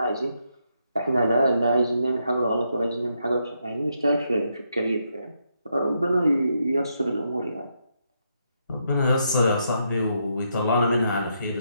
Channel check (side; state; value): both; inverted; correlation -0.79